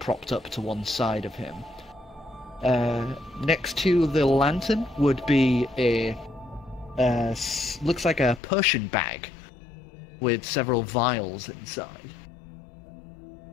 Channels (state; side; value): drops out; right; at 8.4 s